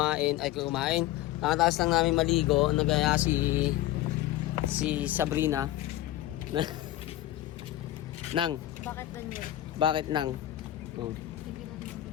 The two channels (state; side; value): quieter; right; 14.6 dB